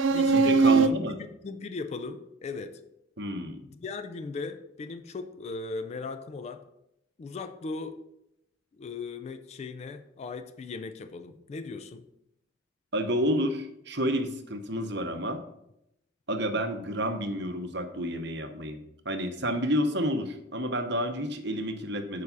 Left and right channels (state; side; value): normal; both; correlation 0.36